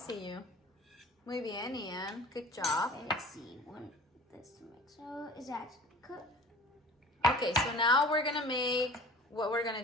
you. Muy bien, Ian. Good job. Okay, let's see. This to mix. So is that cooked? Okay, so now we're gonna make what we're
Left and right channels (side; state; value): both; normal; correlation 0.43